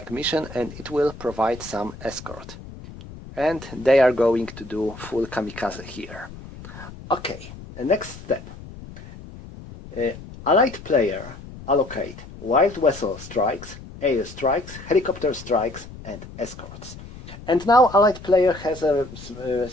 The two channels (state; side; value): noise; left; rumble, 15 dB below the sound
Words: mission, and it will provide some escort. And they are going to do full kamikaze here. Okay, the next step. Allied player allocate wild vessel strikes, air strikes, helicopter strikes and escorts. And now Allied player has a